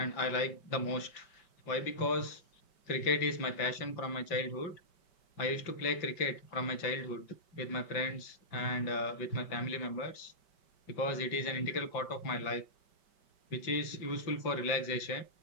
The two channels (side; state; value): right; late; 5.2 ms